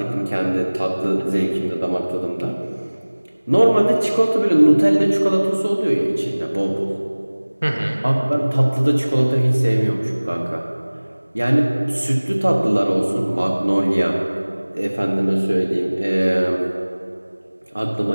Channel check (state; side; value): inverted; both; correlation -1.00